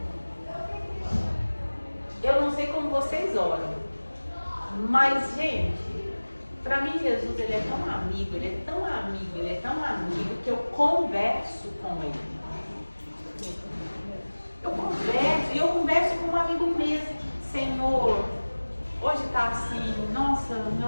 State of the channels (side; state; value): both; inverted; correlation -1.00